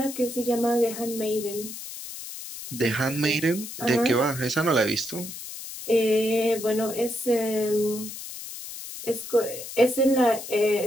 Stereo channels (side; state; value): left; noise; hiss, 10 dB below the sound